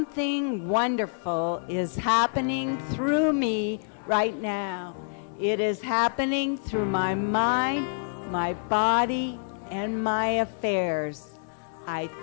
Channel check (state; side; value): silent; right; 58 dB below the other